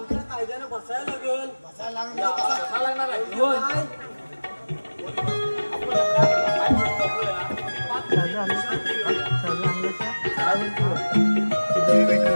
कायद्याने बसायला लागेल. बसायला लागणार लागणार आहे.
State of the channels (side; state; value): both; inverted; correlation -1.00